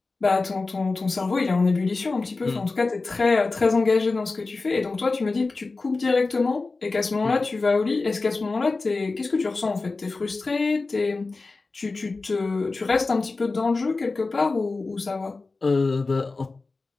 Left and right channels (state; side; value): quieter; right; 3.7 dB